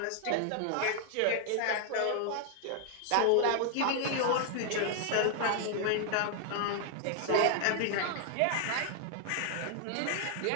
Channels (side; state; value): both; different; correlation 0.00